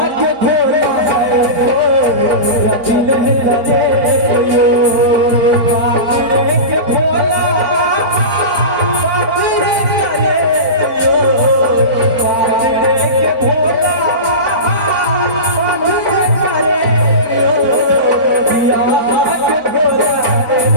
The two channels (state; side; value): late; left; 4.5 ms